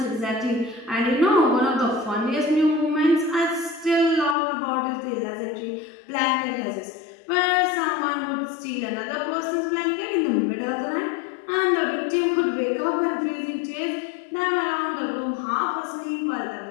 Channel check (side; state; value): right; drops out; at 4.4 s